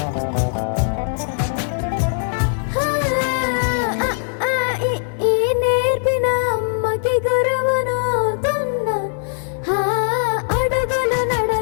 నేర్పిన అమ్మకి గురువునవుతున్నా అడుగులు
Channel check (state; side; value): silent; right; 61 dB below the other